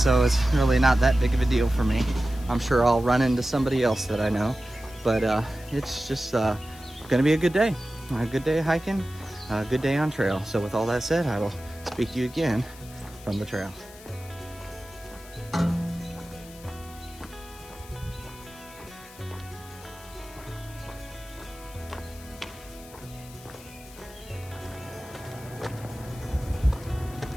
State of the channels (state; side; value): noise; left; hiss, 20 dB below the sound